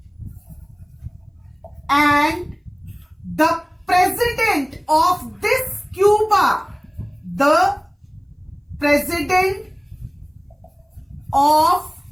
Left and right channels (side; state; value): both; identical; correlation 1.00